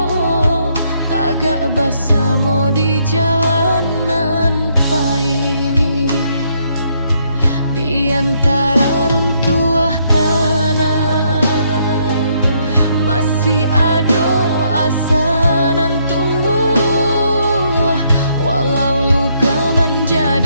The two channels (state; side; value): inverted; both; correlation -0.72